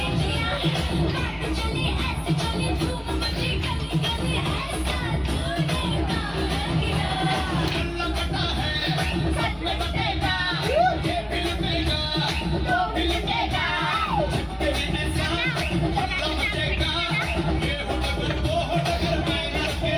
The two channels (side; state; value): both; identical; correlation 1.00